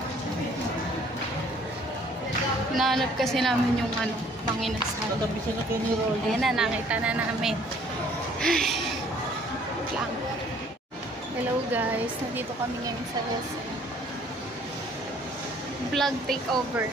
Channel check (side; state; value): both; normal; correlation 0.58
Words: Hinahanap kasi namin yung ano, mga inasal. Ayan na, nakita na namin. Ay, lang. Hello guys, nandito kami ngayon sa SM. Vlog takeover